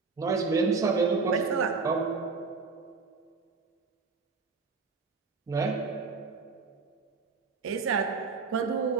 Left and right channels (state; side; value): quieter; left; 4.6 dB